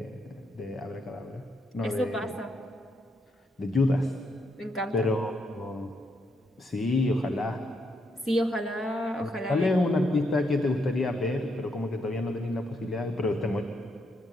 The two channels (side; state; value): both; normal; correlation 0.78